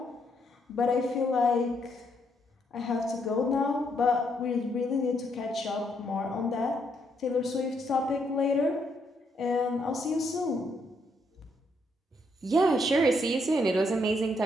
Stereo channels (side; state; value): both; normal; correlation 0.74